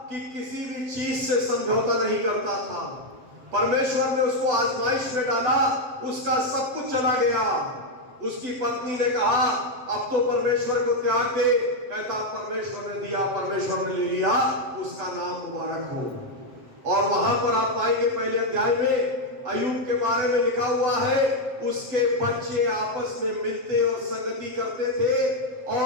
कि किसी भी चीज से समझौता नहीं करता था। परमेश्वर ने उसको आजमाइश में डाला, उसका सब कुछ चला गया। उसकी पत्नी ने कहा, अब तो परमेश्वर को त्याग दे। कहता, परमेश्वर ने दिया, परमेश्वर ने ले लिया, उसका नाम मुबारक हो। और वहां पर आप पाएंगे पहले अध्याय में अय्यूब के बारे में लिखा हुआ है, उसके बच्चे आपस में मिलते और संगति करते थे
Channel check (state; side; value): late; left; 7.6 ms